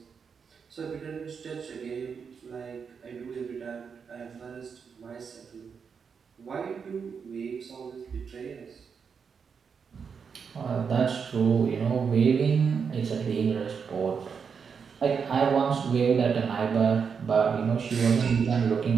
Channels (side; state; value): left; quieter; 6.2 dB